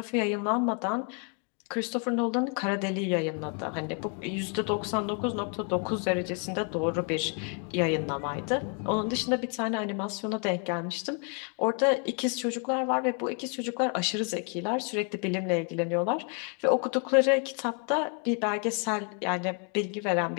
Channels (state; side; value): quieter; right; 38.2 dB